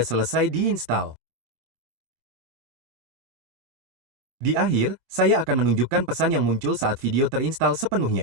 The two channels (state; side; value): late; left; 24 ms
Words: selesai diinstal. Di akhir, saya akan menunjukkan pesan yang muncul saat video terinstal